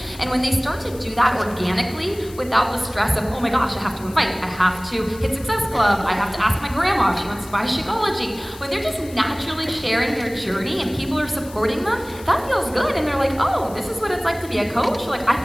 And when they start to do that organically, without the stress of, oh my gosh, I have to invite, I have to hit Success Club, I have to ask my grandma if she wants to buy Shakeology. When they're just naturally sharing their journey and people are supporting them, that feels good. And they're like, oh, this is what it's like to be a coach? Like, I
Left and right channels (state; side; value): noise; left; hiss, 19 dB below the sound